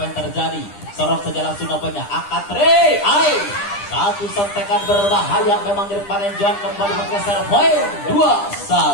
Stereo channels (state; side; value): late; right; 9.9 ms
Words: yang terjadi? Sorok saja langsung nampaknya angkat Tri. Satu sentekan berbahaya memang dari Panenjuan, kembali menggeser poin